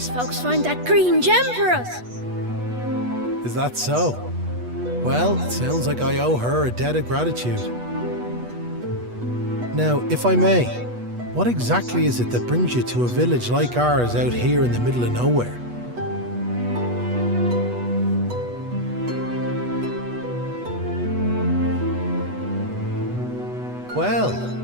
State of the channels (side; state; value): left; late; 8.2 ms